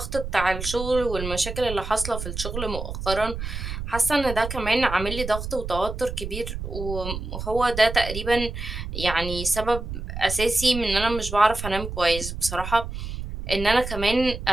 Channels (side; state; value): right; noise; rumble, 7 dB below the sound